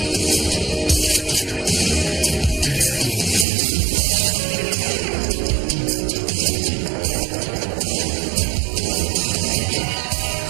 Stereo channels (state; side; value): drops out; left; at 3.5 s